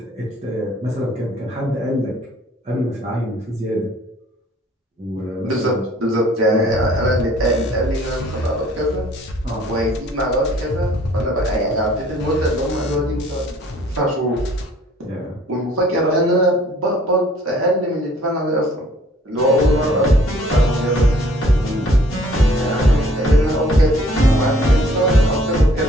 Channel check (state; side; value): normal; both; correlation 0.57